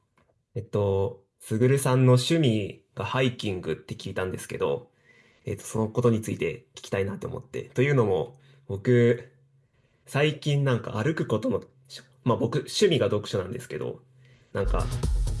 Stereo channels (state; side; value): identical; both; correlation 1.00